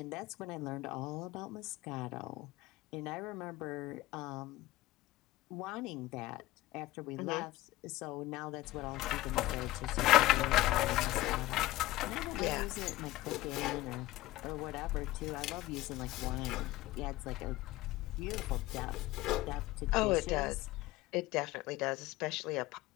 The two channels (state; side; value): quieter; right; 17.2 dB